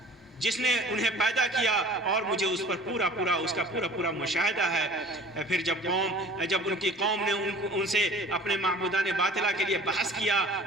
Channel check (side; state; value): both; normal; correlation 0.46